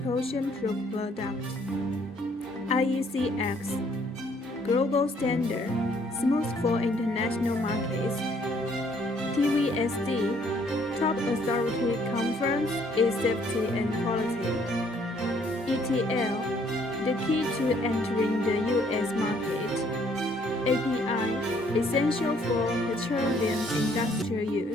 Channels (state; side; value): normal; both; correlation 0.64